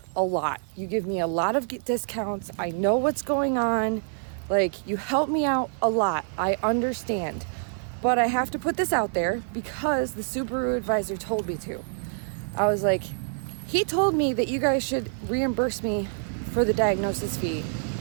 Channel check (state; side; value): silent; left; digital silence